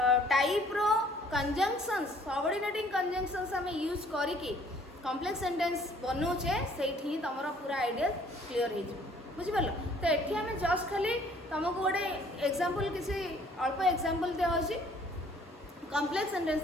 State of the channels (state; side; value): normal; both; correlation 0.59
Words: टाइप रो कंजंक्शंस सबऑर्डिनेटिंग कंजंक्शंस आम यूज करिकी कॉम्प्लेक्स सेंटेंस बनौचे से तुम पूरा आइडिया क्लीयर हो बुझिपार तो ये आम जस्ट खाली तुमको गोटे एग्जांपल किसी अल्प एग्जांपल दिखाई कॉम्प्लेक्स सेंटेंस